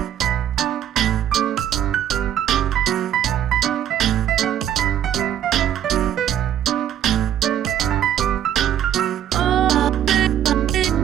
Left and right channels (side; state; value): left; quieter; 10.6 dB